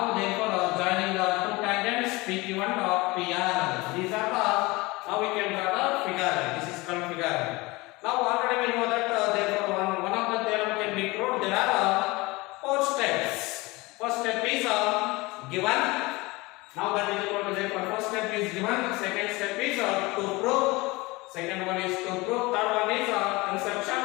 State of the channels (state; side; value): quieter; right; 22.9 dB